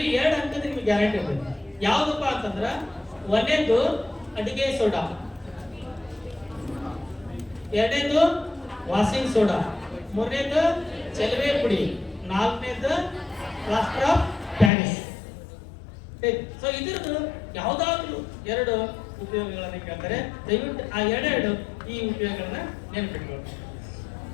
2 ಅಂಕದ ನಿಮ್ಗೆ ಗ್ಯಾರಂಟಿ ಇರ್ತದೆ. ಯಾವ್ದಪ್ಪ ಅಂತಂದ್ರ 1ನೇದು ಅಡಿಗೆ ಸೋಡಾ, 2ನೇದು ವಾಷಿಂಗ್ ಸೋಡಾ, 3ನೇದು ಚೆಲುವೆ ಪುಡಿ, 4ನೇದು ಪ್ಲಾಸ್ಟರ್ ಆಫ್ ಪ್ಯಾರಿಸ್. ಸೊ ಇದ್ರದ್ದು ಯಾವ್ದಾದ್ರು 2 ಉಪಯೋಗಗಳನ್ನ ಕೇಳ್ತಾರೆ. ದಯವಿಟ್ಟು ಆ 2 ಈ ಉಪಯೋಗಗಳನ್ನ ನೆನಪಿಟ್ಕೊಳ್ಳಿ.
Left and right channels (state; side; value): drops out; right; at 14.7 s